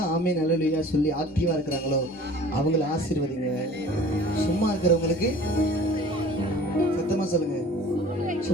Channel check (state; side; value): normal; both; correlation 0.45